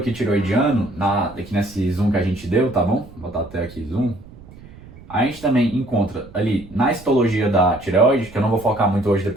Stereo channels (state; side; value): noise; right; rumble, 20 dB below the sound